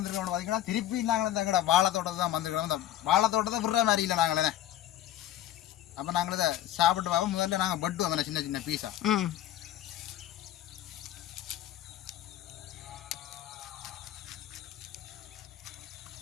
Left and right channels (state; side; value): quieter; right; 12.7 dB